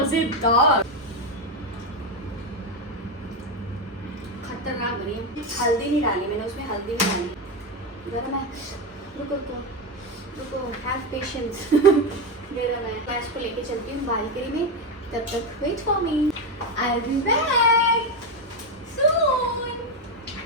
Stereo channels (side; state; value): both; normal; correlation 0.11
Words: खतरनाक बनी। हल्दी नहीं डाली मैंने उसमें, हल्दी नहीं डाली। जरा मैं रुको रुको रुको, हैव पेशेंस। जरा मैं इसको लेके चलती हूँ बालकनी में, तब तक wait for me, I will be back soon.